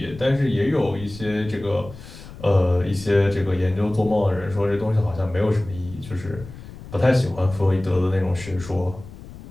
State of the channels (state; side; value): noise; left; rumble, 16 dB below the sound